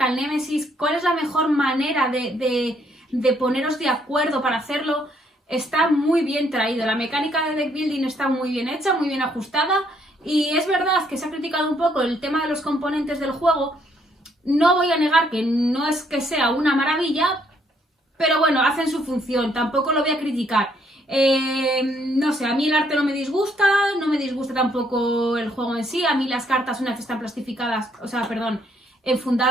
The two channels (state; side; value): normal; both; correlation 0.69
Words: al Némesis, cuál es la mejor manera de poneros de acuerdo para hacerlo, está muy bien traído. La mecánica de deck building está muy bien hecha, muy bien ajustada. Y es verdad que se ha criticado un poco el tema de los componentes del juego. No voy a negar que no es que sea una maravilla, pero bueno, hacen su función, tampoco lo voy a criticar. No sé, a mí el arte no me disgusta tampoco el juego en sí. A mí las cartas, una vez están plastificadas, o sea, perdón,